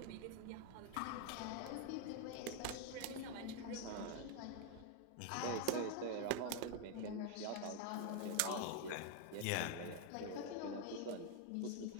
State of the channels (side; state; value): both; different; correlation 0.00